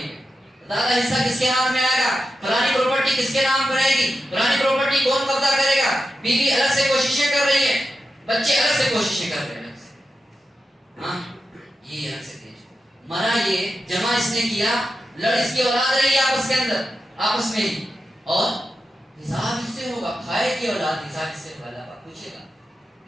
میں، زیادہ حصہ کس کے ہاتھ میں آئے گا، فلانی پراپرٹی کس کے نام پر رہے گی، فلانی پراپرٹی کون قبضہ کرے گا. بیوی الگ سے کوششیں کر رہی ہے، بچے الگ سے کوششیں کر رہے ہیں. ہاں یہ الگ سے مرا، یہ جمع اس نے کیا، لڑ اس کی اولاد رہی آپس کے اندر، آپس میں ہی، اور حساب اس سے ہوگا. کھائے کی اولاد حساب اس سے ہوگا. اللہ پوچھے گا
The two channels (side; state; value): both; normal; correlation 0.90